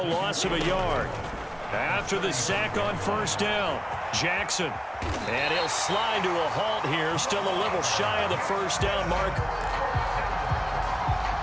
loss of a yard. After the sack on 1st down, Jackson. And he'll slide to a halt here. Still a little shy of the 1st down mark.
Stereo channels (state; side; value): identical; both; correlation 1.00